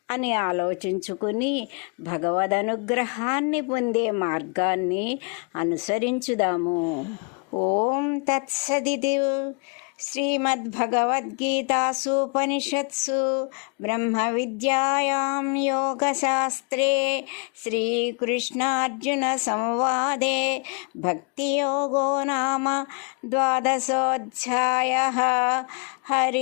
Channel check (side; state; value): right; quieter; 36.2 dB